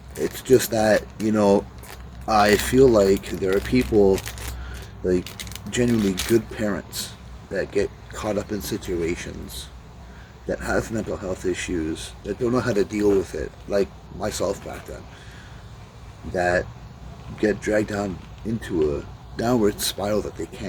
It's just that, you know, I feel like there are people, like genuinely good parents, that get caught up in situations, that have mental health issues, that don't know how to deal with it, like myself back then, that get dragged down into a downward spiral that they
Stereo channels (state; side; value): identical; both; correlation 1.00